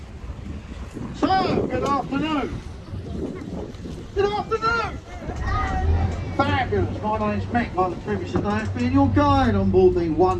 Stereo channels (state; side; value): identical; both; correlation 1.00